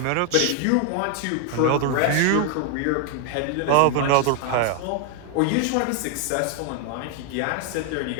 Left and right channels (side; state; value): both; different; correlation 0.00